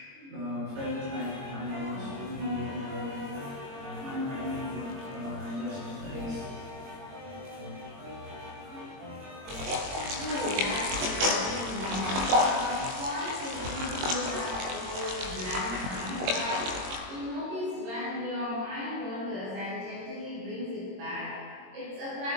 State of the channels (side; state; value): left; late; 22 ms